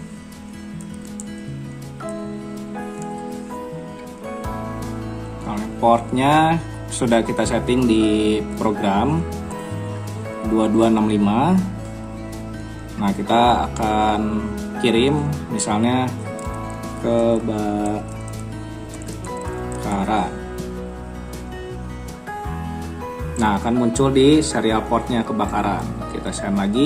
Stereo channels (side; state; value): both; identical; correlation 1.00